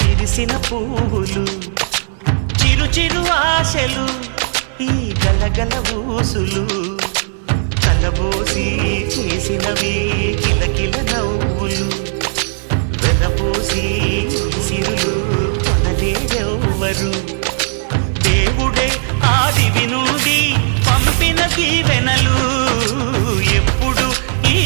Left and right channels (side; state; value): left; silent; 69 dB below the other